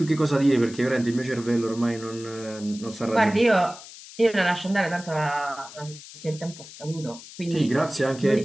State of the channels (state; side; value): noise; left; hiss, 16 dB below the sound